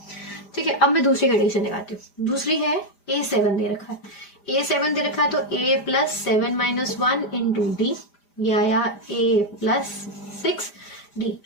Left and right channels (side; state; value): right; late; 5.0 ms